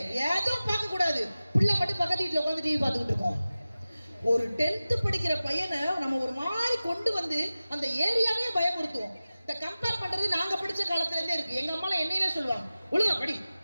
எதுவும் பார்க்க கூடாது. பிள்ளை மட்டும் பக்கத்து வீட்டுல உட்காந்து டிவி பார்த்துக்கிட்டு இருக்கோம். ஒரு 10th படிக்கிற பையனை நம்ம ஒரு மாதிரி கொண்டு வந்து அந்த ஏரியாவே பயமுறுத்துவோம். இந்த கம்பேர் பண்றது நாங்க படிச்ச காலத்துல இருந்தே இருக்கு. எங்க அம்மா என்னையே சொல்லுவாங்க, ஒழுங்கா படி,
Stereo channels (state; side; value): inverted; both; correlation -0.96